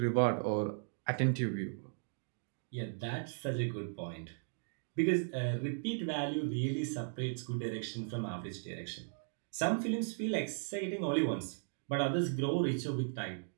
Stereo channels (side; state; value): left; silent; digital silence